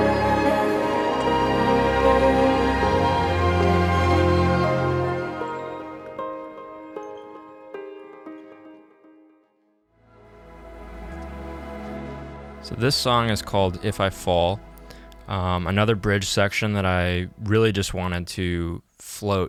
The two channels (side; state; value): both; identical; correlation 1.00